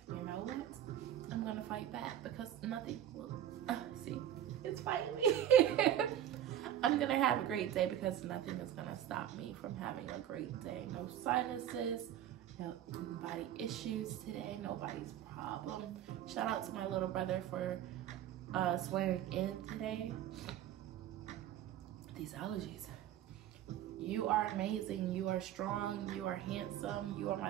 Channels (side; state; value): left; quieter; 11.0 dB